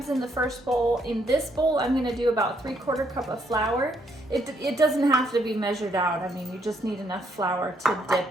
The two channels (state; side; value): normal; both; correlation 0.72